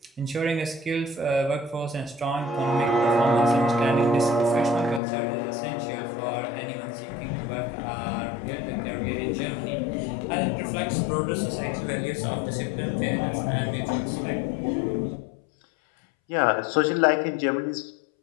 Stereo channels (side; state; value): right; drops out; at 5.0 s